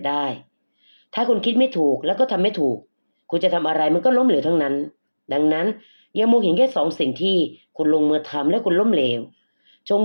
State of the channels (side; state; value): both; inverted; correlation -1.00